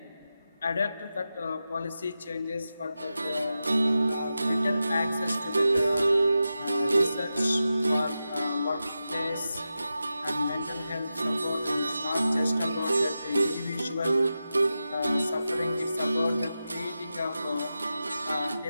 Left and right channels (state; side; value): inverted; both; correlation -0.91